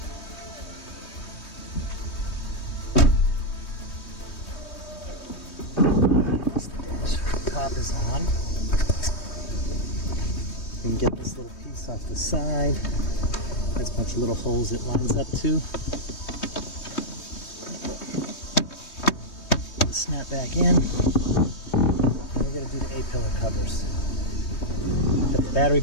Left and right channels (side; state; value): right; late; 3.2 ms